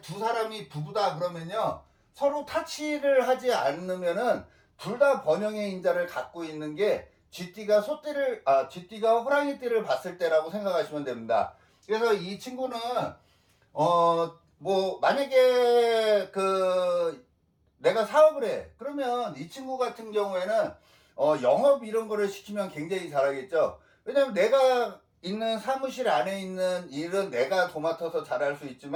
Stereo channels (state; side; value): identical; both; correlation 1.00